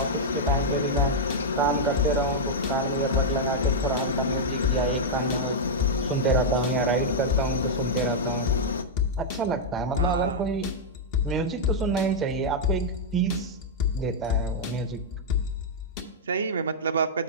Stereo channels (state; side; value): normal; both; correlation -0.05